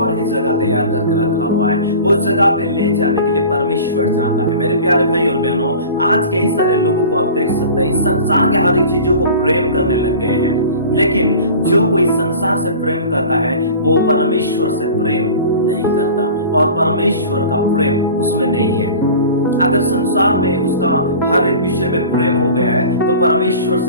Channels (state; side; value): inverted; both; correlation -0.39